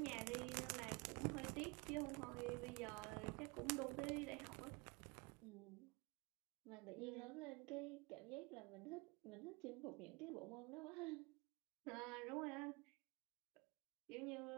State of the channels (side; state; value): left; quieter; 27.6 dB